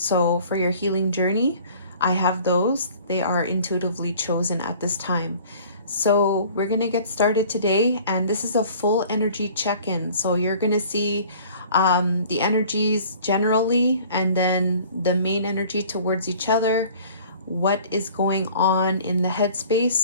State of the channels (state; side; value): inverted; both; correlation -0.49